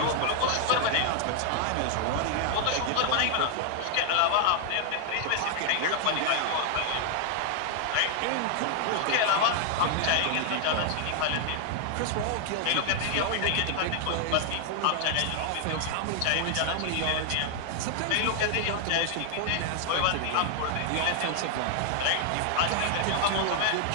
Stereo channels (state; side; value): different; both; correlation 0.00